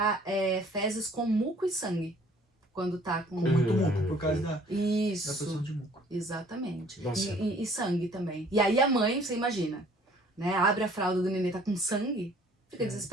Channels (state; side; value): normal; both; correlation 0.56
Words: fezes com muco e sangue. Quando tá com muito muco, por causa da produção de muco. Exatamente. E sangue também. E aí a mãe, você imagina, né? Abre a fralda do nenê, tá com sangue, fica